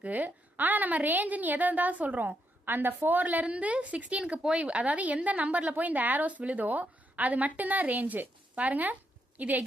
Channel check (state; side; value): normal; both; correlation 0.79